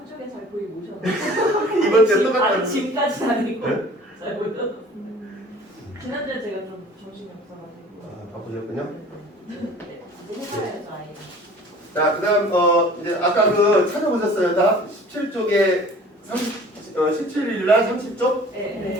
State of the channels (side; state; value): both; normal; correlation 0.47